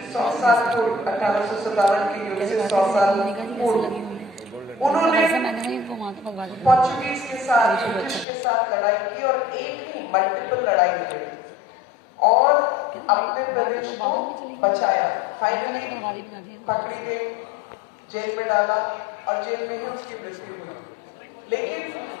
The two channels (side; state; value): right; drops out; at 8.2 s